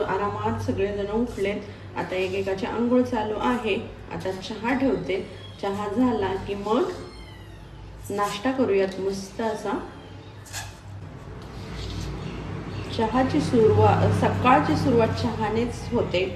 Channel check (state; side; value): identical; both; correlation 1.00